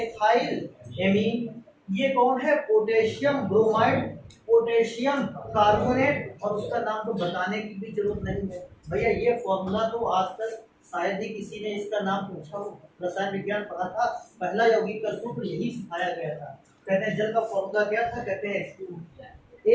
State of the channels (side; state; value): both; identical; correlation 1.00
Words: ये कौन है? Potassium bromide, potassium carbonate. और उसका नाम तो बताने की भी जरूरत नहीं है भैया, ये फॉर्मूला तो आज तक शायद ही किसी ने इसका नाम पूछा हो। रसायन विज्ञान पढ़ा था, पहला यौगिक का सूत्र यही सिखाया गया था। कहते हैं जल का फॉर्मूला क्या था? कहते हैं H2।